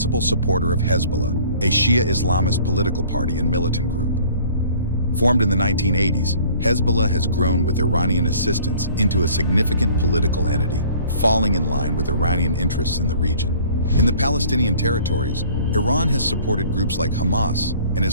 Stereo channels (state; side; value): inverted; both; correlation -0.52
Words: supporter of Hezbollah, a Shia Islamist political party and militant group. Formed in the 1980s, Hezbollah has grown with Iranian assistance into a significant political entity, falling in line with Iranian interests in the region. In the Palestinian territories, Iran has supported groups like Hamas and